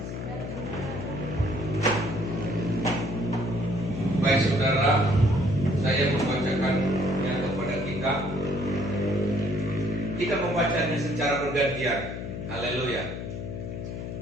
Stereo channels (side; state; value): left; noise; hum, 6 dB below the sound